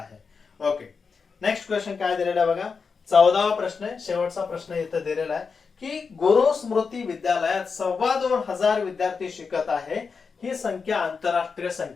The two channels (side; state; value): right; quieter; 5.3 dB